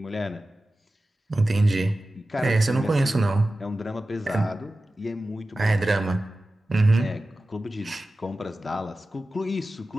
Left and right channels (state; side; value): normal; both; correlation 0.95